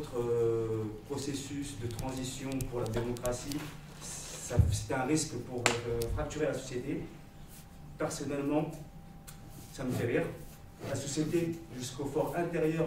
processus de transition pour la démocratie, c'était un risque pour fracturer la société. Personnellement, ça me fait rire. La société, jusqu'au fort intérieur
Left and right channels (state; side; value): identical; both; correlation 1.00